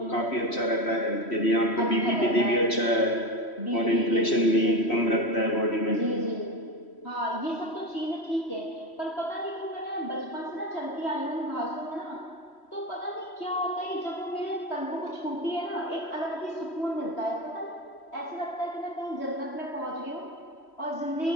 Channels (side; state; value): right; late; 3.1 ms